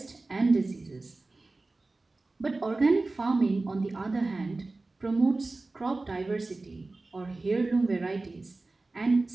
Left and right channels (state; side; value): quieter; left; 3.3 dB